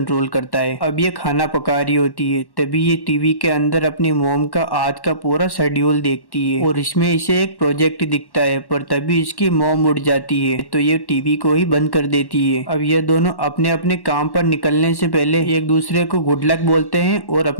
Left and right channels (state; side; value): late; right; 1.1 ms